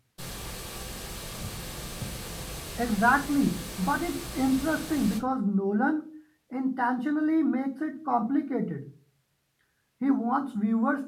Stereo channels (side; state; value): both; identical; correlation 1.00